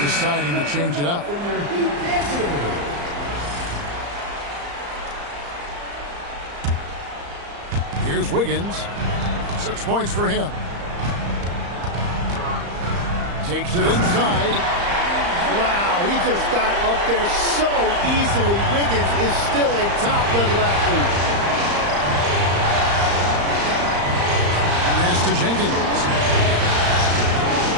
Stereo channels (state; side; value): late; left; 35 ms